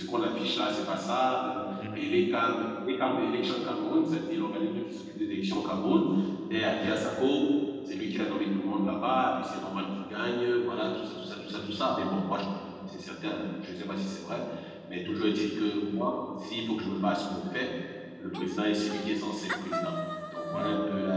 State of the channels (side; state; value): both; identical; correlation 1.00